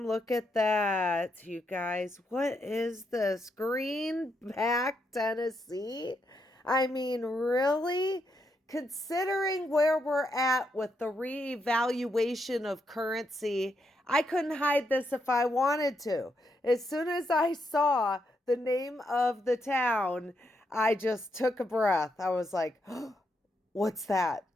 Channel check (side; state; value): both; normal; correlation 0.80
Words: Look at that, you guys. What is this? Greenback, Tennessee? I mean, really? Considering where we're at with the reevaluation of currency, I couldn't hide this if I wanted to. As soon as I saw the name of the town, I just took a breath. I was like, oh, what's that?